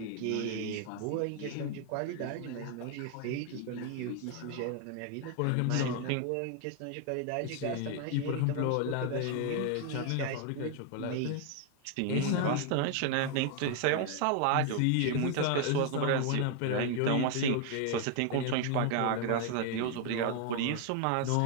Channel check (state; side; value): different; both; correlation 0.00